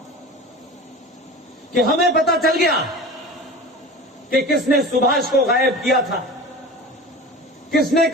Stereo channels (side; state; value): both; normal; correlation 0.34